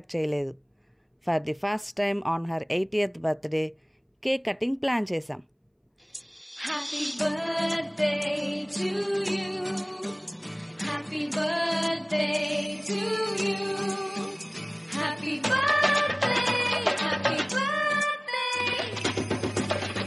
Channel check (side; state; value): both; identical; correlation 1.00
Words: చేయలేదు. For the first time on her 80th birthday cake cutting plan చేశాం. Happy birthday to you. Happy birthday to you. Happy birthday, happy birthday.